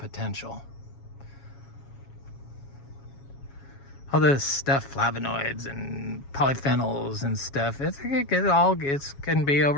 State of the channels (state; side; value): late; right; 7.2 ms